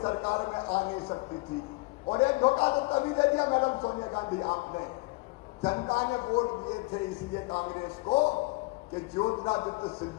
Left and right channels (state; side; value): quieter; right; 24.6 dB